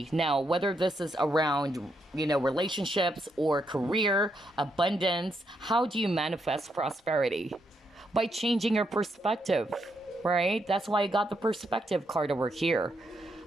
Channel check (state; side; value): normal; both; correlation 0.79